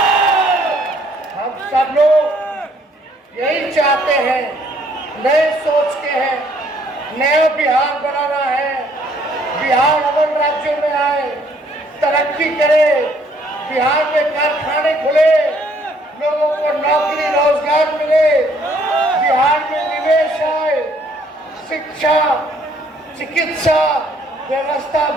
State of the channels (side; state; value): both; normal; correlation 0.64